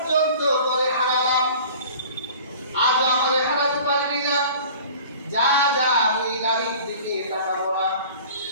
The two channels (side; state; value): both; inverted; correlation -0.45